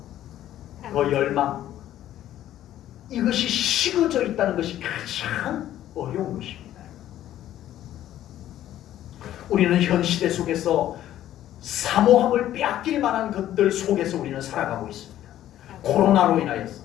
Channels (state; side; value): quieter; right; 12.5 dB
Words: 그 열망, 이것이 식어져 있다는 것이 가장 어려운 것입니다. 우리는 현 시대 속에서 사모함을 빼앗길 만한 것들 속에서 우리는 살아가고 있습니다. 코로나로 인하여서